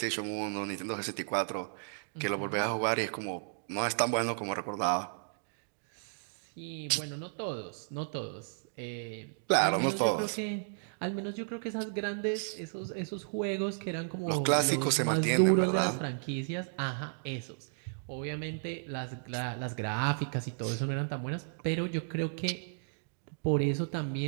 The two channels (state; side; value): silent; left; digital silence